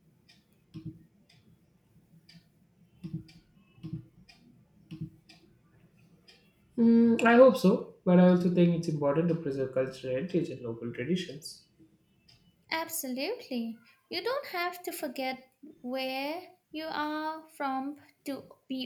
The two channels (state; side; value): identical; both; correlation 1.00